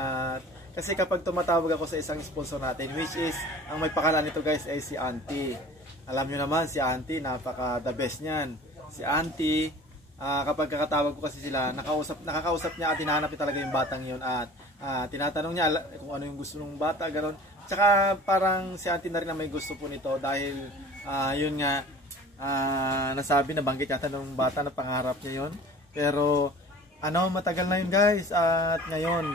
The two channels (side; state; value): both; normal; correlation 0.44